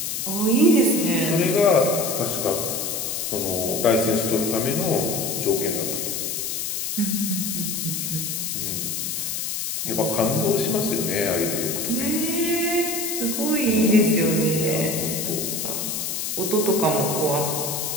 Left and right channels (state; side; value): noise; left; hiss, 2 dB below the sound